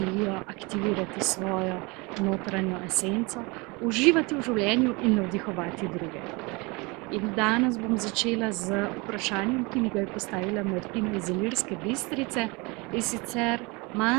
aktivirati svojo notranjo esenco, uživati v življenju in navdihovati druge. In danes bom začela z vprašanjem, ki mi ga je postavila Martina iz Ilirske Bistrice, in sicer:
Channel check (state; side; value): quieter; left; 26.8 dB